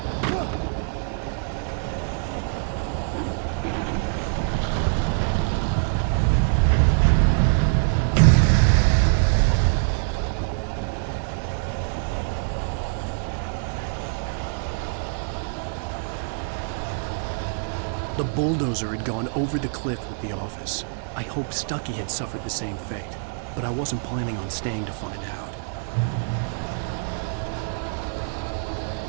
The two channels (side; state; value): left; silent; 62 dB below the other